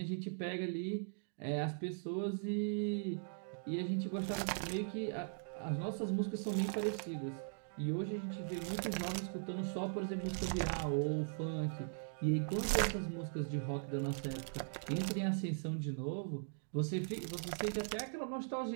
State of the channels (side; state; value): left; silent; digital silence